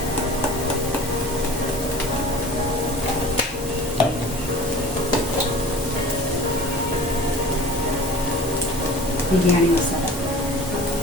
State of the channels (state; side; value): normal; both; correlation 0.41